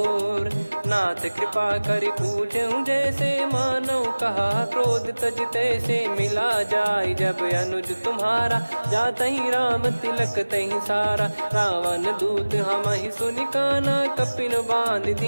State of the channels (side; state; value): both; inverted; correlation -1.00